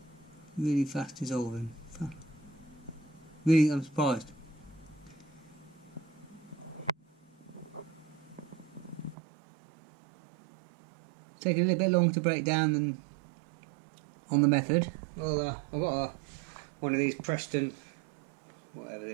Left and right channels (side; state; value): left; drops out; at 9.2 s